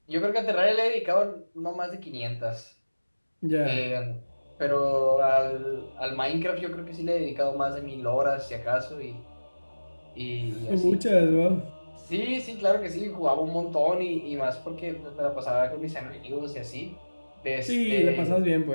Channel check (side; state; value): both; inverted; correlation -1.00